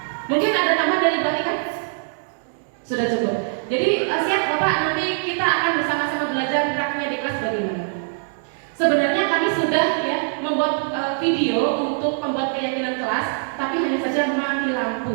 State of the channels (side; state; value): left; silent; 58 dB below the other